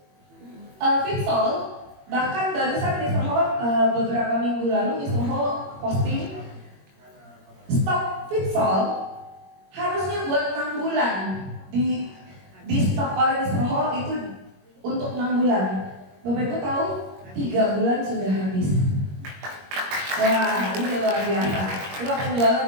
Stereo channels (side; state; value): left; late; 21 ms